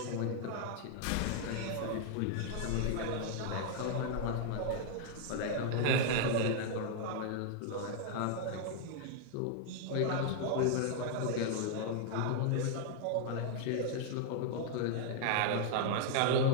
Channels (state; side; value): different; both; correlation 0.00